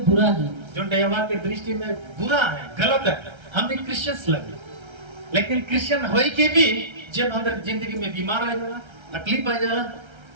बुरा है, जो यहोवा की दृष्टि में बुरा है, गलत है। हम भी क्रिश्चियंस लगे, लेकिन क्रिश्चियन होई के भी जब अंदर जिंदगी में बीमार आ जाला, तकलीफ आ जाला,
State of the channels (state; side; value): late; left; 1.3 ms